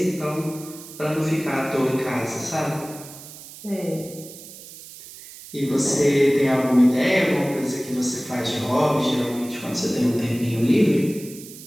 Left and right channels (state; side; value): noise; right; hiss, 16 dB below the sound